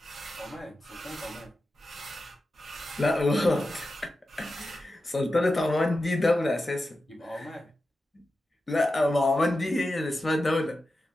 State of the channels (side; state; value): both; normal; correlation 0.91